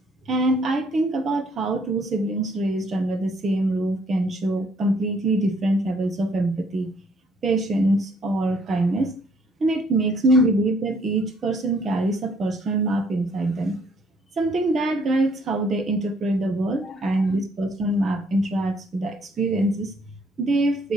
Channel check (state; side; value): normal; both; correlation 0.65